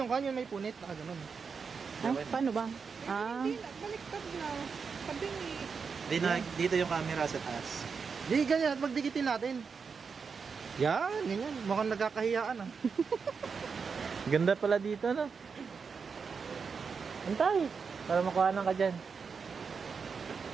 yung kanyo, may punit. Ganun. Paano ba? Baliktad na. Kabingi. Dito yung camera sa taas. Di, ganyan. Magdikitin natin. Yan, ganyan. Mukhang nagkakahiyaan. Ganda pala dito, no? Antay, para makuhanan ka dyan.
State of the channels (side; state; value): left; quieter; 5.6 dB